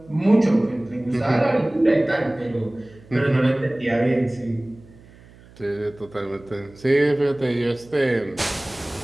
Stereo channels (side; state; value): right; noise; hum, 24 dB below the sound